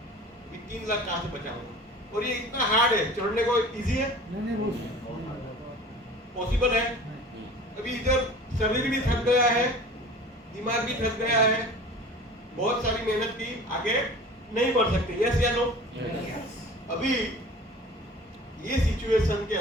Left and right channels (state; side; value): normal; both; correlation 0.41